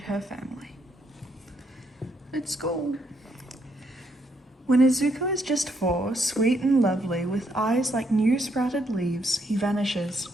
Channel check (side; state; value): both; normal; correlation 0.74